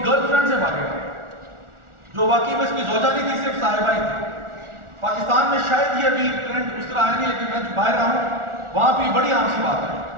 گرل فرینڈ سے بھاگے گا, جو واقعی میں اس کی زوجہ نہیں تھی, صرف صاحبہ ہی تھی. پاکستان میں شاید یہ ابھی ٹرینڈ اس طرح آیا نہیں, لیکن میں باہر رہا ہوں, وہاں پہ بڑی عام سی بات ہے.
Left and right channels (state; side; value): late; left; 1.4 ms